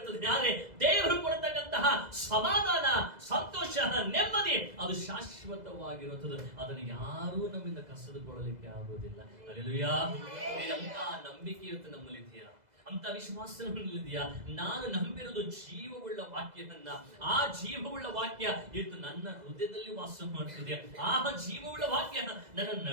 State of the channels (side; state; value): left; late; 2.0 ms